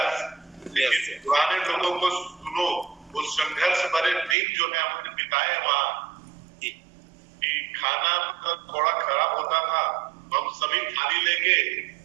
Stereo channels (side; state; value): left; drops out; at 4.4 s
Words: पुराने लोगों को सुनो, उस संघर्ष भरे दिन जो है हमने बिताए वहाँ, कि खाना थोड़ा खराब होता था, हम सभी थाली लेके